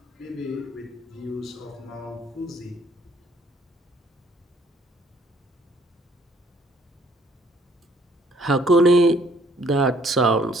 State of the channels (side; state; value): both; normal; correlation 0.62